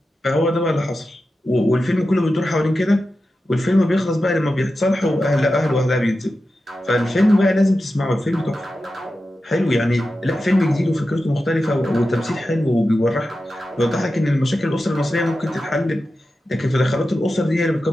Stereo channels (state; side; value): normal; both; correlation 0.92